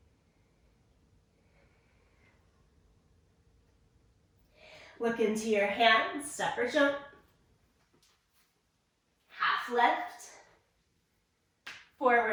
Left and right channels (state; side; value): identical; both; correlation 1.00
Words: Look into your hands, step or jump. Half lift.